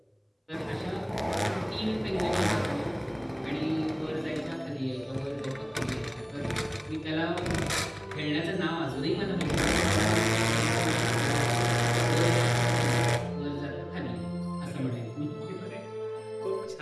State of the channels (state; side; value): identical; both; correlation 1.00